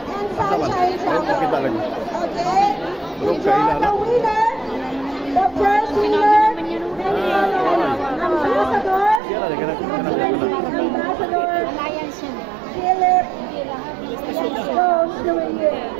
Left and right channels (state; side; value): drops out; left; at 9.2 s